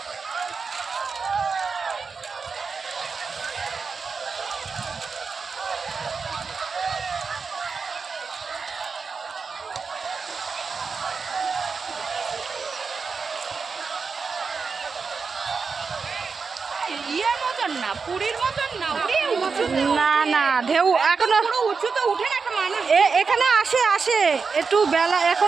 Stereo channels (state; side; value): quieter; left; 5.1 dB